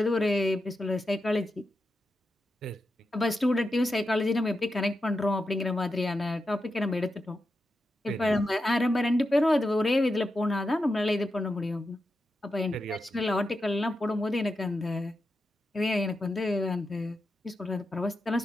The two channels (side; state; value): both; normal; correlation 0.88